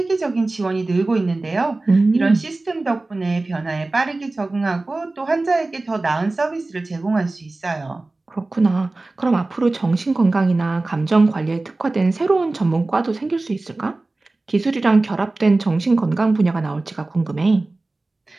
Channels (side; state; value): left; quieter; 3.1 dB